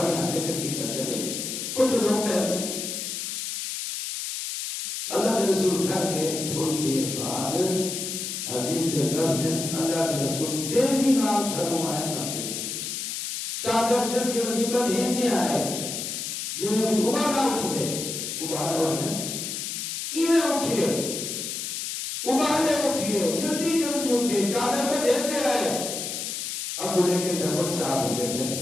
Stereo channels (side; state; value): left; noise; hiss, 4 dB below the sound